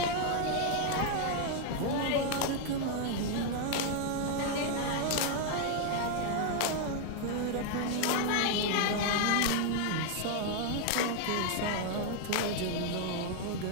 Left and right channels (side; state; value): both; different; correlation 0.00